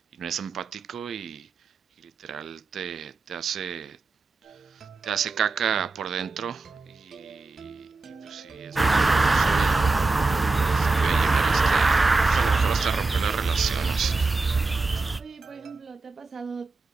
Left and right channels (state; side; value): quieter; left; 3.8 dB